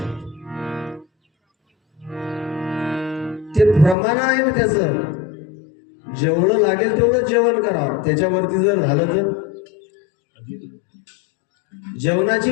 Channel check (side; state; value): right; drops out; at 4.0 s